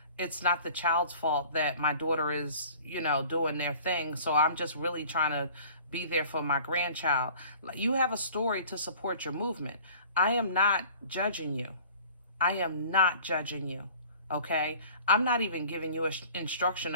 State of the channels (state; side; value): inverted; both; correlation -0.48